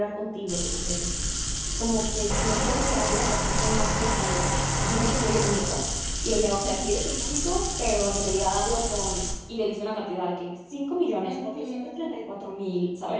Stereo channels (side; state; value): both; identical; correlation 1.00